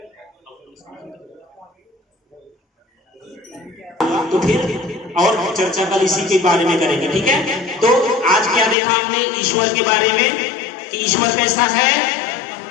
तो फिर और चर्चा कल इसी के बारे में करेंगे, ठीक है। तो आज क्या देखा हमने ईश्वर के बारे में, कि ईश्वर कैसा है,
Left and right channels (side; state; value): right; drops out; at 8.8 s